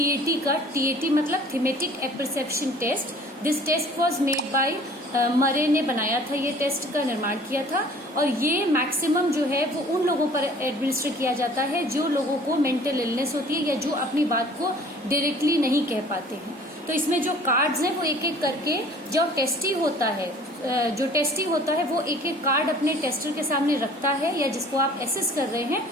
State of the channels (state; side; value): normal; both; correlation 0.50